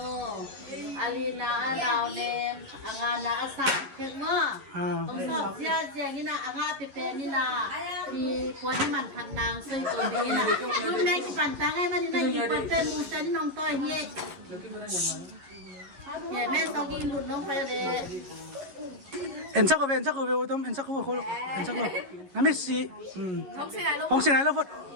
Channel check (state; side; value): late; left; 11 ms